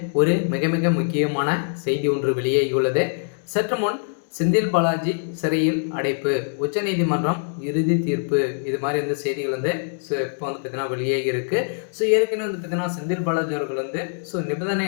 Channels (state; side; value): silent; right; digital silence